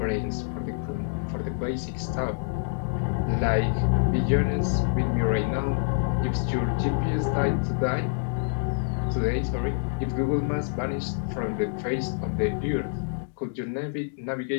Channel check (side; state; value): right; silent; digital silence